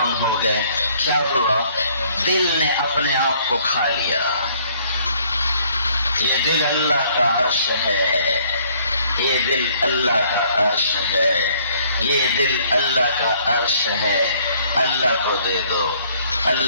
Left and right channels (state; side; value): inverted; both; correlation -0.62